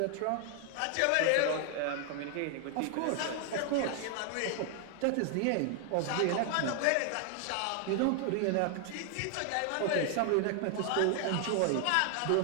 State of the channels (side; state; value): both; different; correlation 0.00